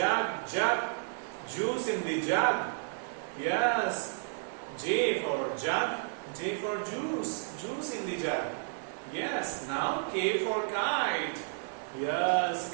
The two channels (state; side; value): silent; left; digital silence